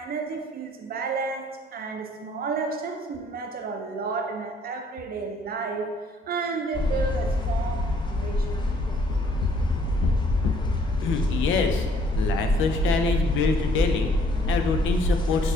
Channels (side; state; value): both; normal; correlation 0.62